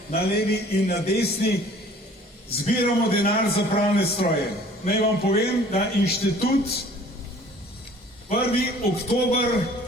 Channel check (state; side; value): normal; both; correlation 0.51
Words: na levi in na desni, zbiramo denar za pralne stroje. Naj vam povem, da inštitut 1. oktober,